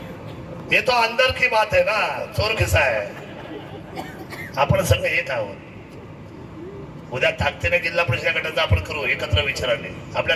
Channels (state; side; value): identical; both; correlation 1.00